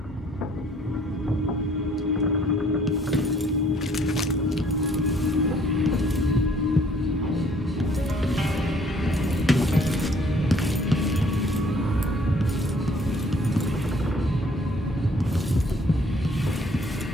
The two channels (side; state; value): both; normal; correlation 0.60